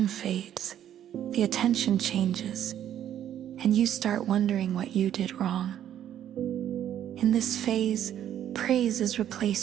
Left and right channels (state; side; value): quieter; left; 10.7 dB